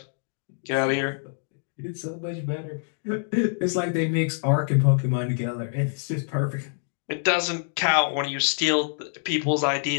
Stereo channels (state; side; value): silent; right; digital silence